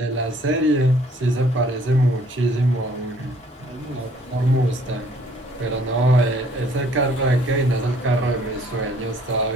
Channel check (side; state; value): both; normal; correlation 0.59